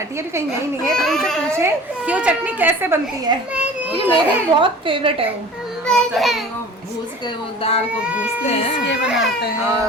है, अभी कहीं यहीं नहीं है, तो उनसे पूछें कि वो चटनी कैसे बनती है, क्योंकि मेरी बहुत फेवरेट है वो। चटनी को भूज के वो दाल को भूजते हैं बनाते हैं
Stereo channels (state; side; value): normal; both; correlation 0.42